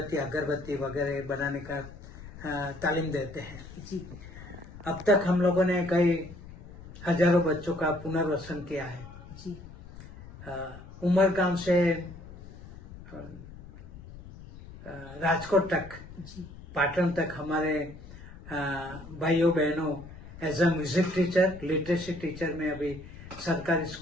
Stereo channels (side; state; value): left; noise; rumble, 16 dB below the sound